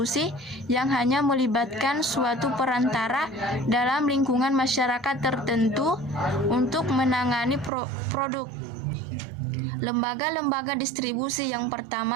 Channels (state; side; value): drops out; left; at 7.7 s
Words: yang hanya melibatkan suatu perantara dalam lingkungan masyarakat tertentu untuk menangani produk. Lembaga-lembaga distribusi. Yang